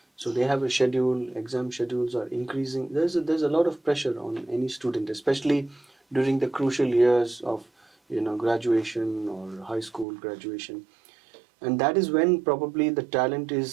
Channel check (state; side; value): drops out; left; at 10.1 s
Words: so they have a schedule. Exam schedules are increasing. There's a lot of pressure on any student, especially during the crucial years of graduation or high school graduation, and that is when probably the talent